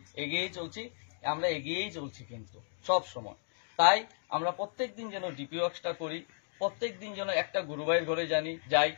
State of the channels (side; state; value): right; silent; 55 dB below the other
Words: চলছি কিন্তু সব সময়। তাই আমরা প্রত্যেকদিন যেন ডিপি ওয়ার্কসটা করি, প্রত্যেকদিন যেন একটা গুরুভাইয়ের ঘরে যাই।